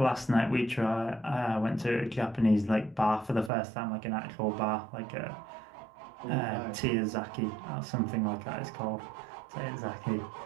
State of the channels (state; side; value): drops out; left; at 3.5 s